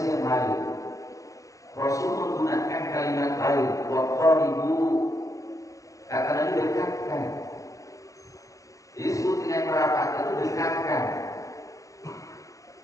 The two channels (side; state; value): right; late; 0.16 ms